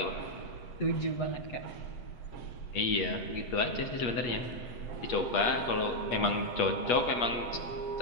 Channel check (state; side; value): late; right; 8.4 ms